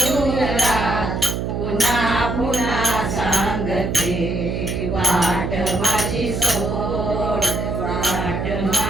पुन्हा पुन्हा सांगते वाट माझी सोड, वाट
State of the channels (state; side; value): noise; right; hum, 2 dB below the sound